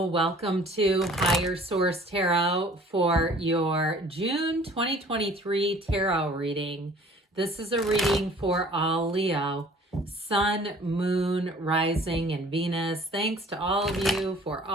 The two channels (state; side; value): normal; both; correlation 0.51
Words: Welcome to Higher Source Tarot for your June 2023 tarot reading. This is a reading for all Leo, Sun, Moon, Rising, and Venus. Thanks to all of you for